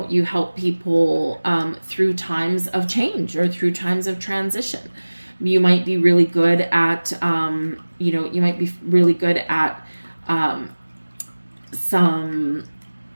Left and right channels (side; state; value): both; inverted; correlation -1.00